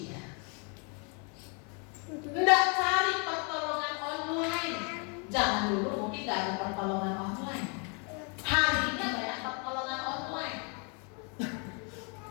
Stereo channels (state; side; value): quieter; right; 36.2 dB